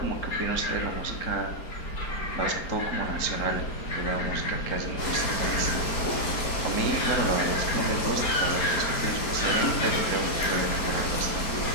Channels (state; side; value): late; right; 4.4 ms